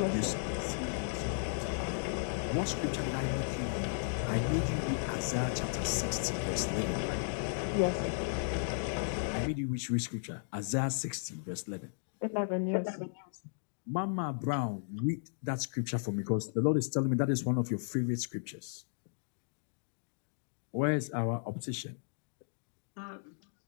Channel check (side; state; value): right; silent; digital silence